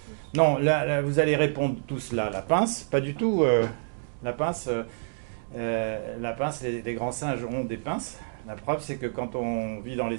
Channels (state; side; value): silent; left; digital silence